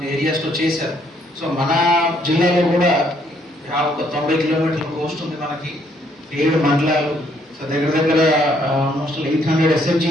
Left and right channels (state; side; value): normal; both; correlation 0.68